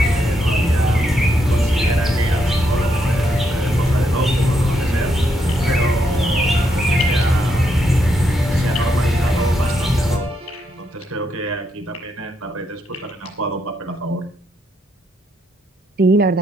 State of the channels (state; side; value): normal; both; correlation 0.78